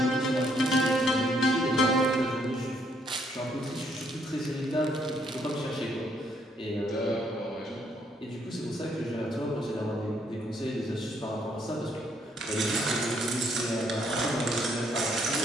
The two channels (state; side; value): normal; both; correlation 0.70